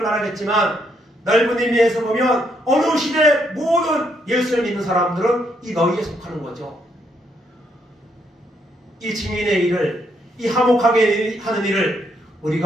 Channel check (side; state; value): both; normal; correlation 0.74